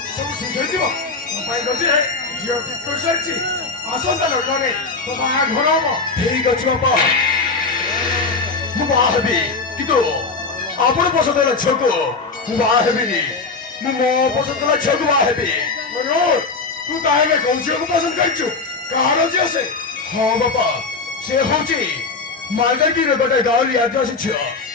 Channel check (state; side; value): quieter; right; 4.1 dB